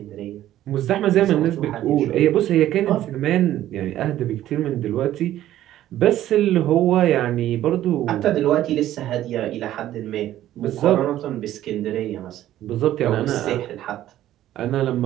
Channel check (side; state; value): left; quieter; 13.1 dB